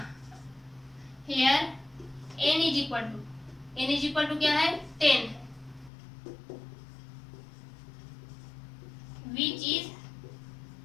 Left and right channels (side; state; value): right; drops out; at 5.9 s